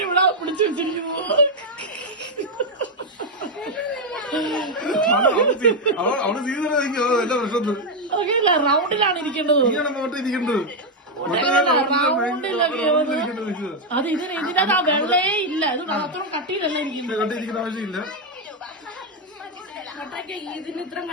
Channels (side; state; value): both; normal; correlation 0.02